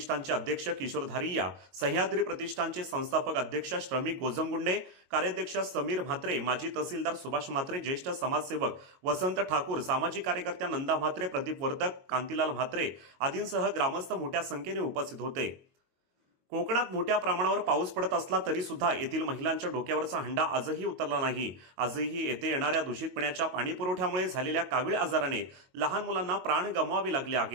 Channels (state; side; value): late; left; 22 ms